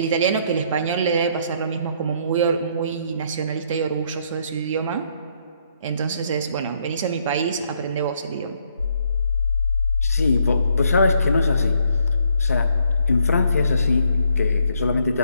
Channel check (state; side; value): inverted; both; correlation -0.71